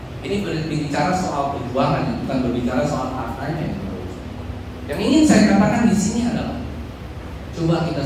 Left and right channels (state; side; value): identical; both; correlation 1.00